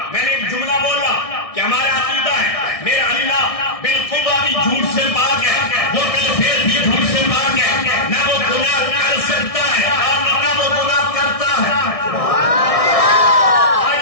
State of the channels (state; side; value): late; right; 1.6 ms